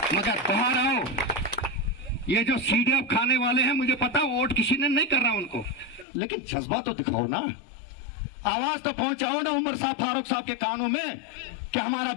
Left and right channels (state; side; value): drops out; right; at 6.1 s